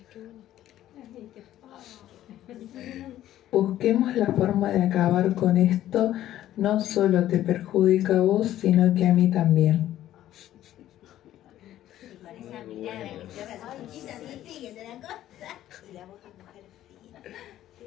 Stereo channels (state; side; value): quieter; right; 12.9 dB